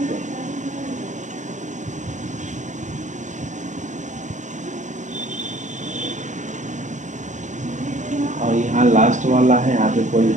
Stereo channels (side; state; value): left; late; 0.35 ms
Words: हैं। और यहाँ लास्ट वाला है, यहाँ पे कोई